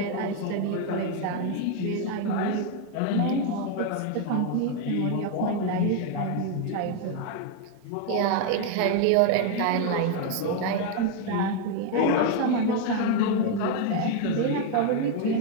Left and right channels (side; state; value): both; different; correlation 0.01